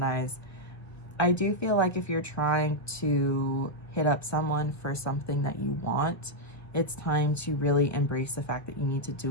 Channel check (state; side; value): late; right; 1.4 ms